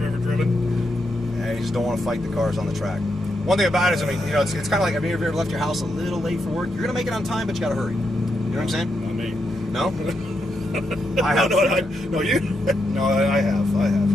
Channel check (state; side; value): normal; both; correlation 0.82